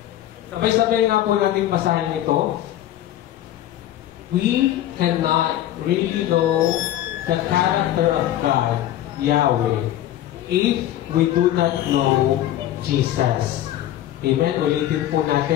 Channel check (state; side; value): quieter; right; 12.8 dB